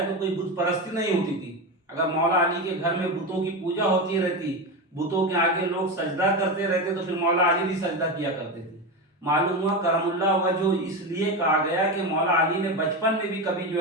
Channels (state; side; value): normal; both; correlation 0.18